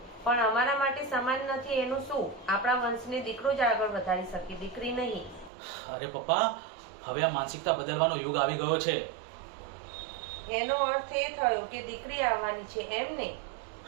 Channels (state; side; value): drops out; left; at 5.5 s